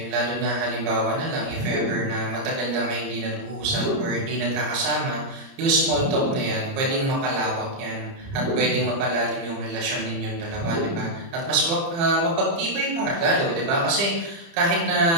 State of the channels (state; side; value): late; left; 30 ms